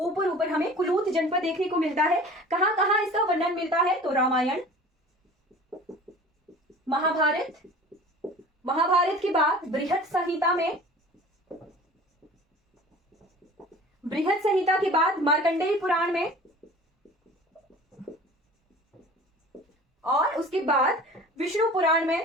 हमें कुलूत जनपद देखने को मिलता है। कहां कहां इसका वर्णन मिलता है, तो रामायण, महाभारत, महाभारत के बाद बृहत संहिता में, बृहत संहिता के बाद मार्कंडेय पुराण में, और उसके बाद विष्णु पुराण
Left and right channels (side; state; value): both; normal; correlation 0.42